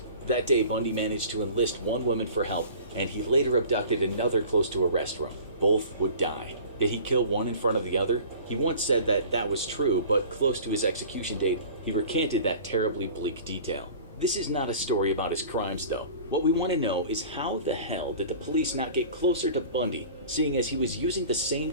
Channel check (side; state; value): both; inverted; correlation -0.43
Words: That day, Bundy managed to enlist 1 woman for help, and he later abducted another close to a restaurant. Both would die. Did he kill one in front of the other? He once said that that was true, but close to his execution date, he recanted that terribly bleak detail. This is not a story about his crimes, though. What we want to know is how the hell did the police not get closer to Bundy, seeing as he was using the same